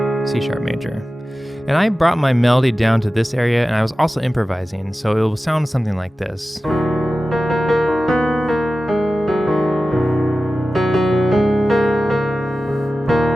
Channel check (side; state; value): both; normal; correlation 0.95